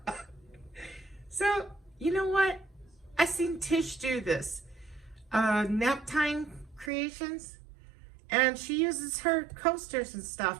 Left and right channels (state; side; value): drops out; left; at 6.9 s